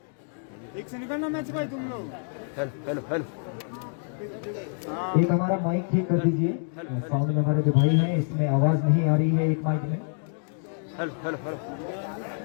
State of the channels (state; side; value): silent; right; 60 dB below the other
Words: एक से निकलना मैच भाई तुम लोग। हेलो हेलो हेलो एक हमारा माइक ठीक कर दीजिए। साउंड में हमारे जो भाई है इसमें आवाज नहीं आ रही है एक माइक में। Hello hello hello